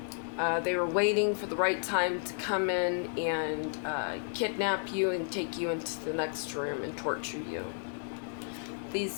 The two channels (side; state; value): right; silent; digital silence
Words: They were waiting for the right time to come in and kidnap you and take you into the next room and torture you.